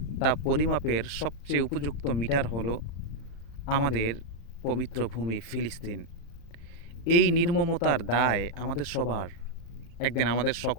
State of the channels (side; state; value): right; late; 35 ms